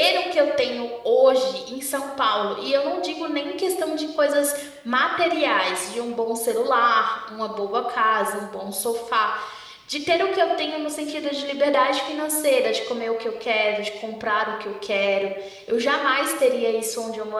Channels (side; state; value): both; identical; correlation 1.00